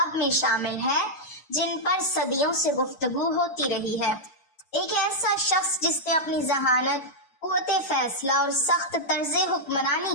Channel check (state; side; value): late; right; 6.5 ms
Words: میں شامل ہے جن پر صدیوں سے گفتگو ہوتی رہی ہے۔ ایک ایسا شخص جس نے اپنی ذہانت، قوت فیصلہ اور سخت طرز حکمرانی